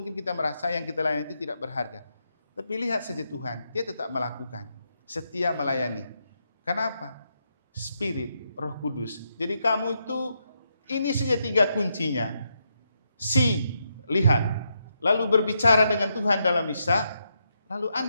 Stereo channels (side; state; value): both; inverted; correlation -0.81